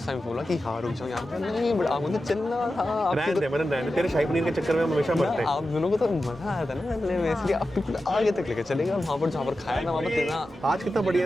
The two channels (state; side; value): normal; both; correlation 0.92